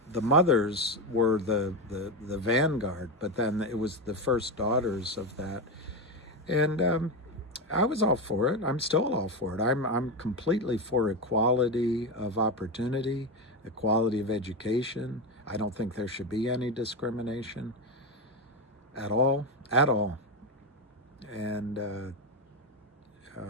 mothers were the vanguard, but then it was the first daughters of that, and I was all for it. I'm still all for it. I'm completely for equality of opportunity, equality of education. I don't think there should be any discrimination at all, and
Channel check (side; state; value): both; normal; correlation 0.14